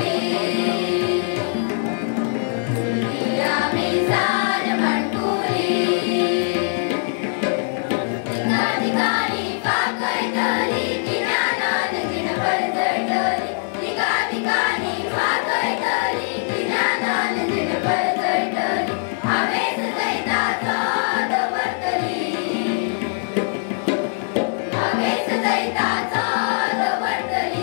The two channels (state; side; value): silent; right; digital silence